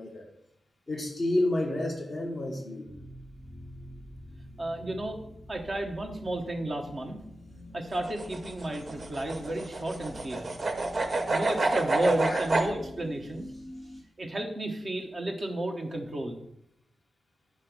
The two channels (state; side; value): normal; both; correlation 0.93